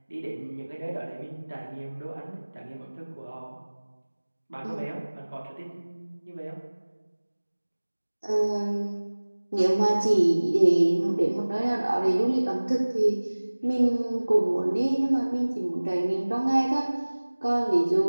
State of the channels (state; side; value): inverted; both; correlation -1.00